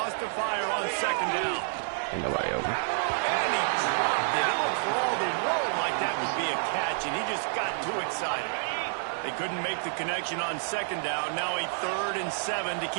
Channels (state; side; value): silent; left; digital silence